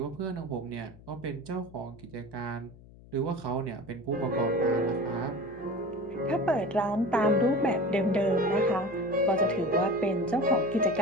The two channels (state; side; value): noise; left; hum, 21 dB below the sound